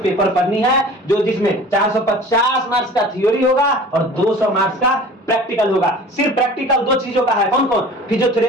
पेपर पढ़नी है, जो जिसमें 450 मार्क्स का थ्योरी होगा और 200 मार्क्स का प्रैक्टिकल होगा। सिर्फ प्रैक्टिकल दो चीजों का है, कौन कौन?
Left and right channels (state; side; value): normal; both; correlation 0.43